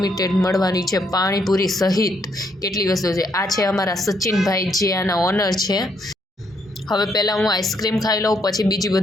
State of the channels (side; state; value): both; normal; correlation 0.73